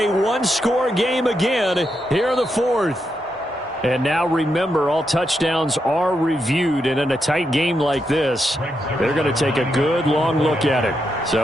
1-score game again here in the 4th. And now remember, all touchdowns are reviewed, and in a tight game like this, they're going to take a good long look at it.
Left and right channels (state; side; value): normal; both; correlation 0.83